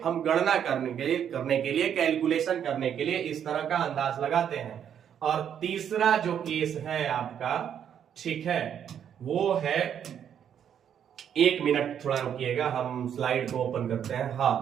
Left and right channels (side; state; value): left; quieter; 8.9 dB